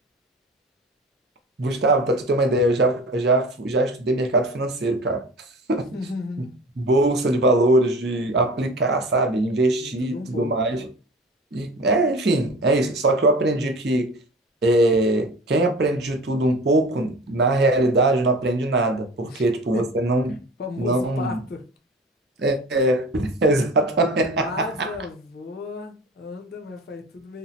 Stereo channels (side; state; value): both; normal; correlation 0.39